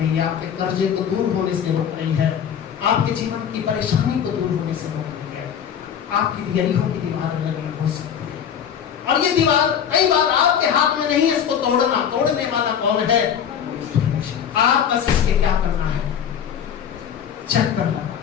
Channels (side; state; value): right; quieter; 8.5 dB